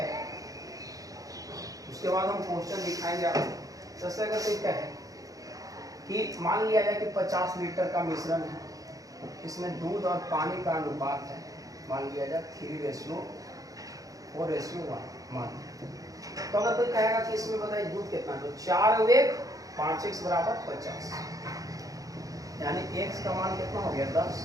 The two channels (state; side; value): late; left; 0.17 ms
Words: उसके बाद हम क्वेश्चन दिखाएंगे आपको। जैसे अगर कोई कहे कि मान लिया जाए कि 50 लीटर का मिश्रण है, इसमें दूध और पानी का अनुपात है, मान लिया जाए 3:4:1 मान। तो अगर कोई कहेगा कि इसमें बताइए दूध कितना, तो 4 वेग 5x बराबर 50, यानी x का मान कितना हो गया 10,